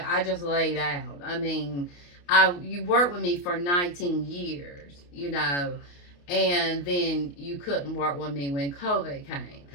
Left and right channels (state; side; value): late; right; 28 ms